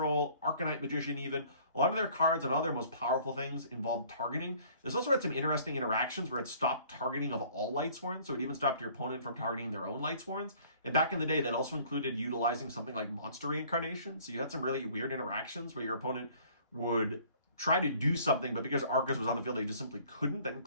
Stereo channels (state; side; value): inverted; both; correlation -0.54